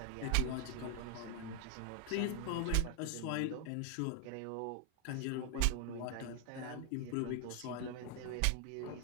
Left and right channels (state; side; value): different; both; correlation 0.00